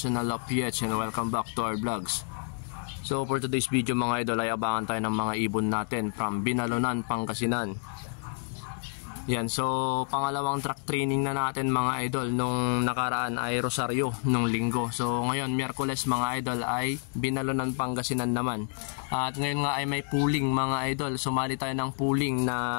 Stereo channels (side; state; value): right; silent; 56 dB below the other